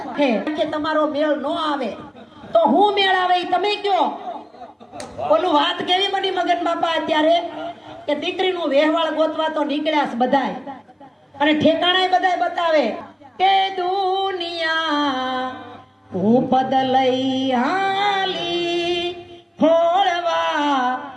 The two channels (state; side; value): identical; both; correlation 1.00